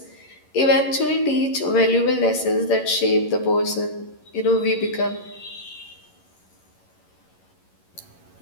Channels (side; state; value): right; late; 11 ms